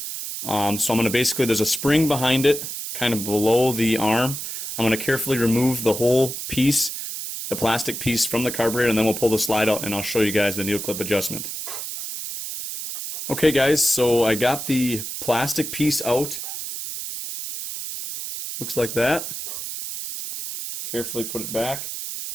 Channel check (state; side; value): noise; right; hiss, 6 dB below the sound